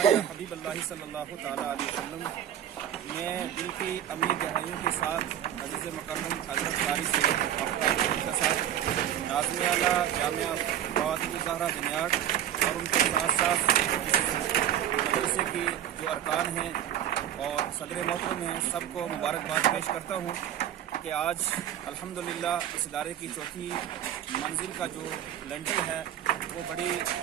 या हबीब अल्लाह सल्लल्लाहु तआला अलैहि वसल्लम। मैं दिल की अमीर गहराइयों के साथ अज़ीज़ मुकर्रम हज़रत कारी सैयद आफ्ताब के साथ नाज़िम आला जामिया फातिमा ज़हरा जनियाट और उनके साथ साथ मदरसे की जो अरकान हैं और सदर मोहतरम हैं, सबको मुबारकबाद पेश करता हूँ कि आज अल्हम्दुलिल्लाह इस इदारे की चौथी मंजिल का जो लेंटर है वो बड़ी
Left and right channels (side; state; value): left; quieter; 10.8 dB